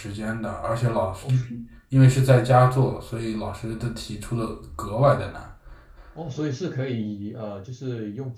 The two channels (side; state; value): both; identical; correlation 1.00